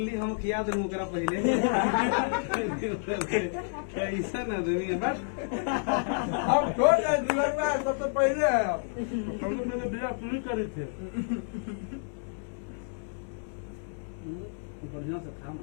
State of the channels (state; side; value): silent; right; digital silence